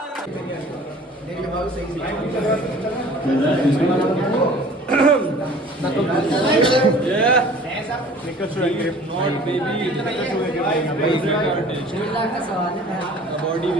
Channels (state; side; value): normal; both; correlation 0.48